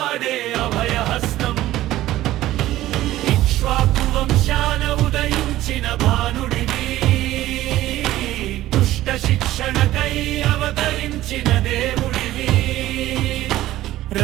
అభయహస్తం వంశాన ఉదయించిన భానుడివి దుష్ట శిక్షణకై అవతరించిన దేవుడివి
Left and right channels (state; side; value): quieter; left; 15.0 dB